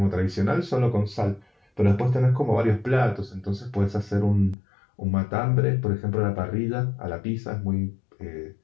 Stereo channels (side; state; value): right; drops out; at 4.5 s